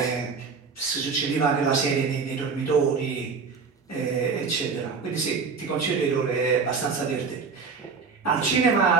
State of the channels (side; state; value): left; quieter; 5.1 dB